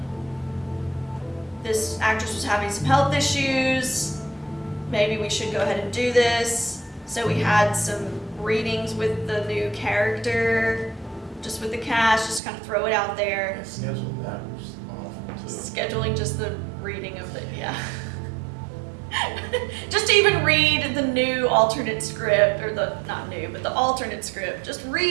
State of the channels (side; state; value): left; drops out; at 12.4 s